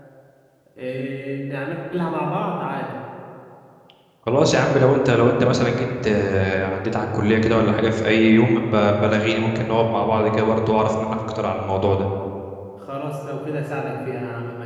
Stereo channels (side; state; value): both; identical; correlation 1.00